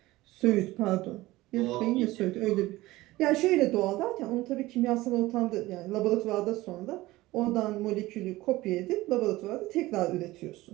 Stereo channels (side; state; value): left; quieter; 18.4 dB